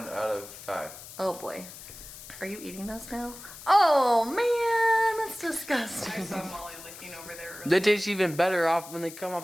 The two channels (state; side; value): noise; left; hiss, 15 dB below the sound